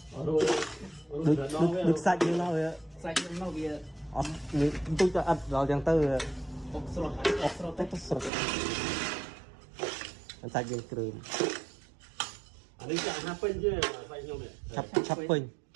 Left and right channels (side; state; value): left; drops out; at 8.3 s